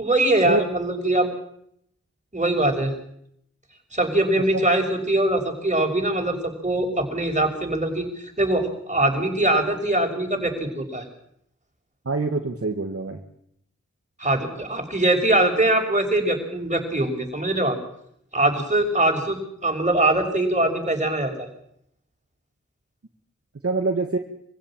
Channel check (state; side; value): normal; both; correlation 0.23